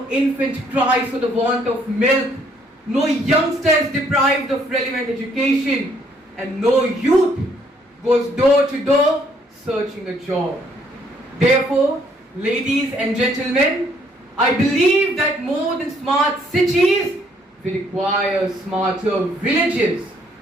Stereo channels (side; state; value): both; normal; correlation 0.67